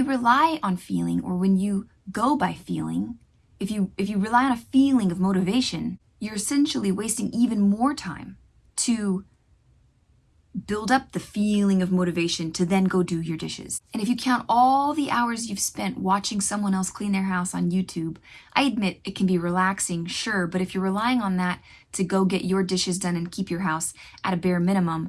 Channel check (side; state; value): both; identical; correlation 1.00